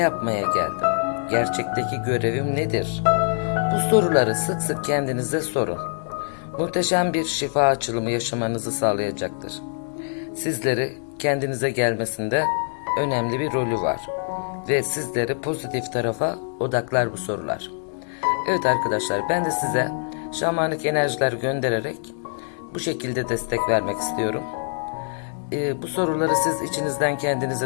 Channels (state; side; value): silent; right; digital silence